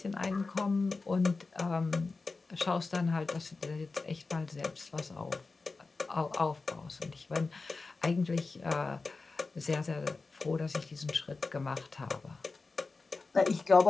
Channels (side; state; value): right; quieter; 3.9 dB